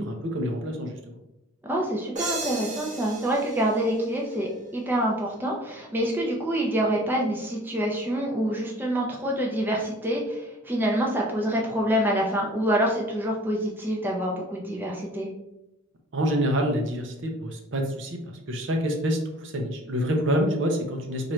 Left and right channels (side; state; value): both; normal; correlation 0.49